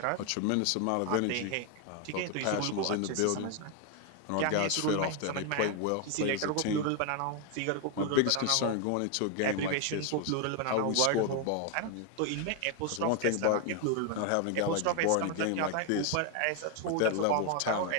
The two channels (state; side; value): different; both; correlation 0.01